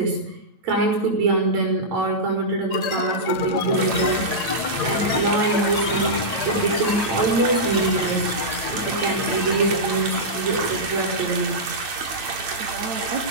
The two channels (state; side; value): late; left; 8.9 ms